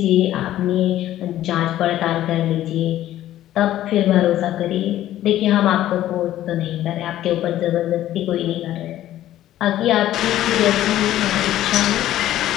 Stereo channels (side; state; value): right; quieter; 13.3 dB